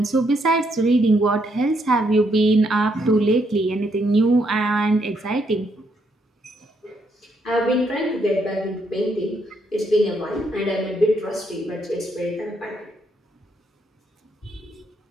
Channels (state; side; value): normal; both; correlation 0.75